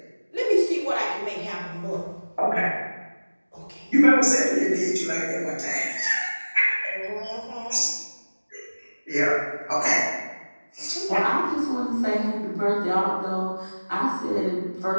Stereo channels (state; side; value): inverted; both; correlation -1.00